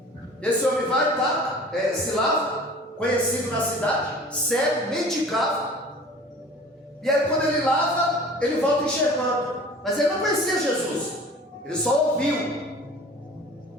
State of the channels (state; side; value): normal; both; correlation 0.44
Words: Esse homem vai, tá? Se lava, conhecido na cidade, cego, mendicava. E aí quando ele lava, ele volta enxergando. Mas ele não conhecia Jesus. Ele só ouviu